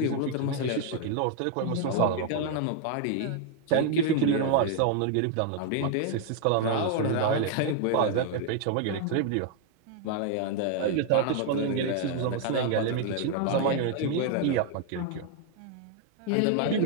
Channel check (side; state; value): both; different; correlation 0.00